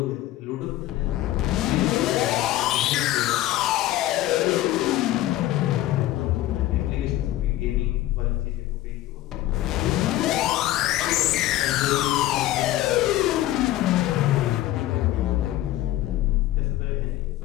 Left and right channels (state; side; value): quieter; right; 15.0 dB